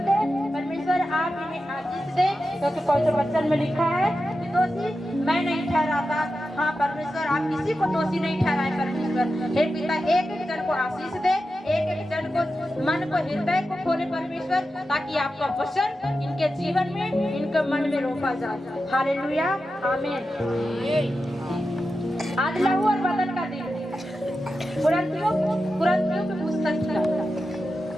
दे परमेश्वर, आप इन्हें आशीष दे, क्योंकि पवित्र वचन में लिखा है कि दोषी मैं नहीं ठहराता। हाँ परमेश्वर, आप किसी को दोषी नहीं ठहराए परमेश्वर। हे पिता एक एक जन को आशीष दे, एक एक जन को मन को हृदय को खोले परमेश्वर, ताकि आपका वचन इनके जीवन में इनके मन में रोपा जाए। हालेलुया, आमीन। आज लहू और बदन का दिन है। कुरिन्थियों की पुस्तक का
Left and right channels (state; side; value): normal; both; correlation 0.91